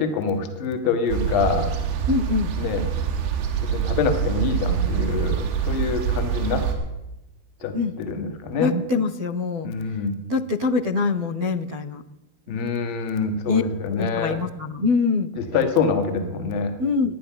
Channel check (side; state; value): left; late; 12 ms